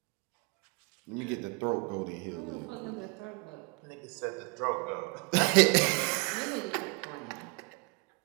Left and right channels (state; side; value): quieter; left; 30.5 dB